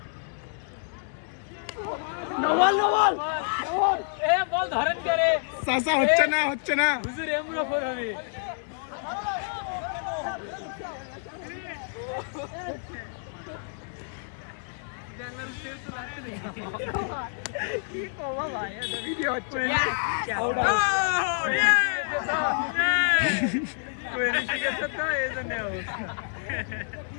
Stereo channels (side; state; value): right; silent; digital silence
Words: নওয়াল এ বল ধরেন করে চাচা হচ্ছে না হুজুর এমরা ফর হবে কি কবা ভাই এটা ভিডিও হচ্ছে